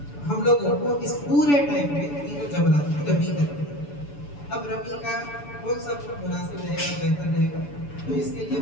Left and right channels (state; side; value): late; right; 6.9 ms